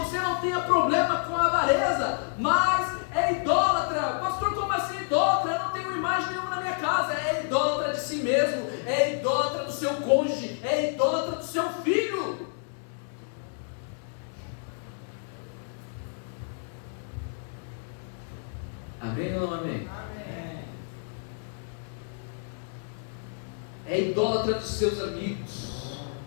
não tenha problema com a avareza, mas é idólatra. Pastor, como assim idólatra? Eu não tenho imagem nenhuma na minha casa. É idólatra de si mesmo, é idólatra do seu cônjuge, é idólatra do seu filho. Amém ou não amém? Amém. É idólatra dos seus amigos.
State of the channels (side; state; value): right; silent; 59 dB below the other